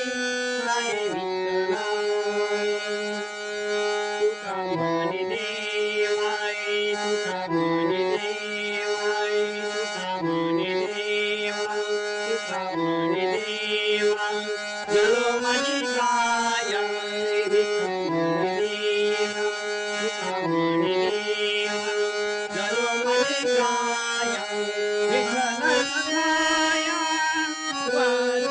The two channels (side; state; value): both; identical; correlation 1.00